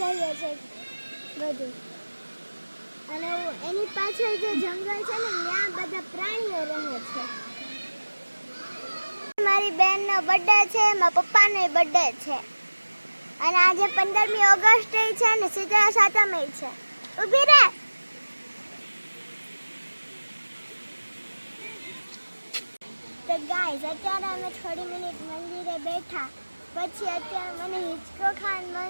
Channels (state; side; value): inverted; both; correlation -1.00